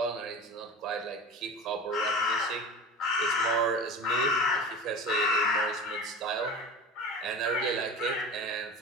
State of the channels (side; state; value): both; normal; correlation 0.33